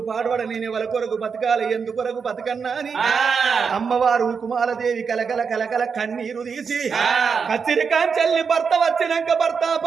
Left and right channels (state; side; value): quieter; left; 5.9 dB